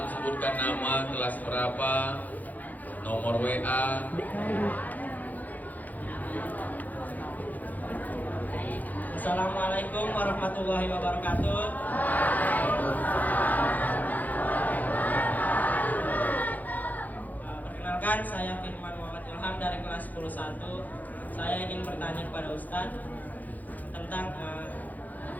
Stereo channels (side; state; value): right; late; 0.081 ms